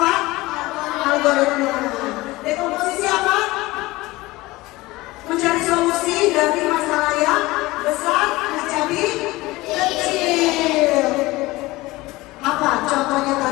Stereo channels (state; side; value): quieter; right; 20.1 dB